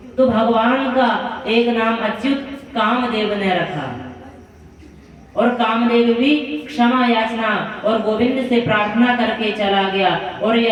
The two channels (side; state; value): both; identical; correlation 1.00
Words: तो भगवान का एक नाम अच्युत कामदेव ने रखा। और कामदेव भी क्षमा याचना और गोविंद से प्रार्थना करके चला गया। और